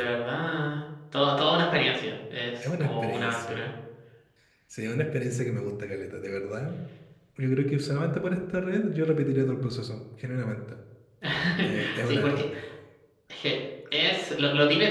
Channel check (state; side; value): identical; both; correlation 1.00